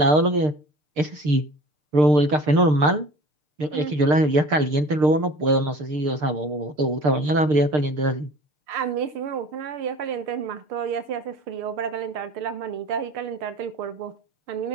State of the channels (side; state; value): left; late; 6.7 ms